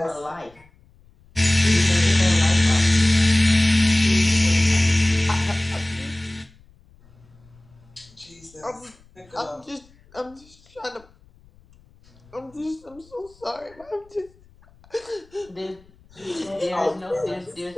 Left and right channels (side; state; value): left; noise; rumble, 28 dB below the sound